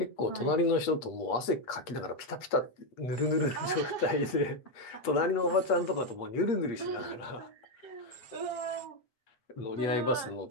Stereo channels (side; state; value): right; late; 8.3 ms